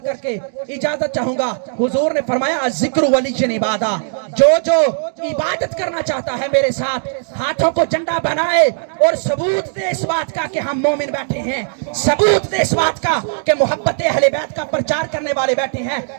کر کے اجازت چاہوں گا. حضور نے فرمایا الذکر ولی عبادہ, جو عبادت کرنا چاہتا ہے میرے ساتھ ہاتھوں کو جھنڈا بنائے اور ثبوت دے اس بات کا کہ ہم مومن بیٹھے ہیں, ثبوت دے اس بات کا کہ محبت اہل بیت کا پرچار کرنے والے بیٹھے ہیں.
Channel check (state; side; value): silent; left; digital silence